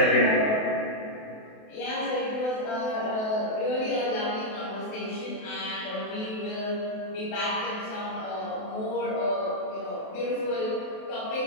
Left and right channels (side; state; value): right; late; 28 ms